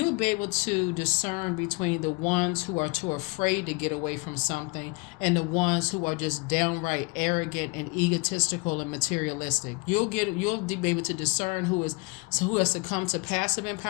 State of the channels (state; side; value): quieter; right; 27.7 dB